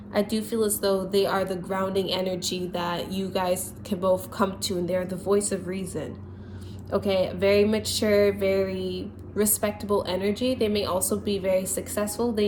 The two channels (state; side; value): identical; both; correlation 1.00